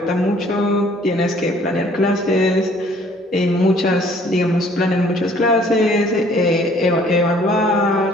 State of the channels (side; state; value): both; normal; correlation 0.57